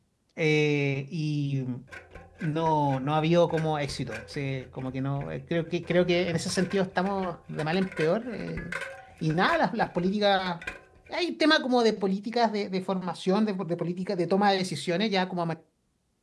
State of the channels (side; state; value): both; identical; correlation 1.00